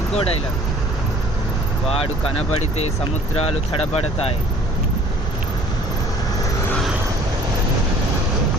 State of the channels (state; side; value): normal; both; correlation 0.52